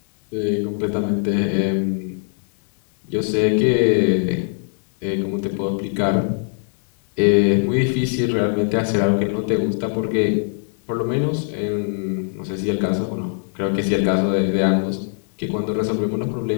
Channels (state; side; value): silent; right; 65 dB below the other